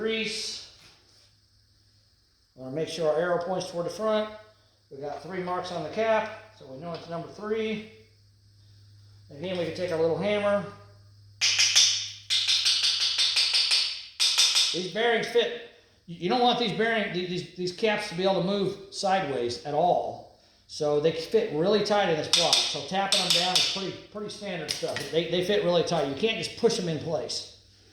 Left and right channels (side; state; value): both; identical; correlation 1.00